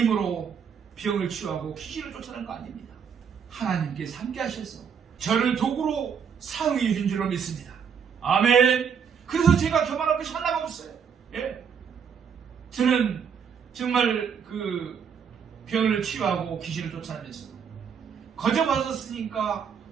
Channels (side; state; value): left; quieter; 7.1 dB